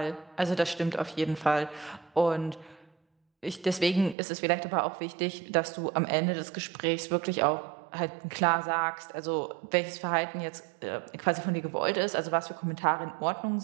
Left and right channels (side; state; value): left; drops out; at 4.2 s